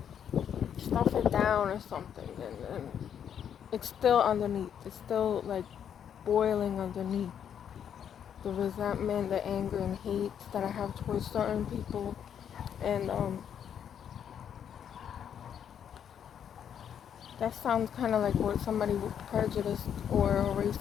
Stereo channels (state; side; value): quieter; right; 8.7 dB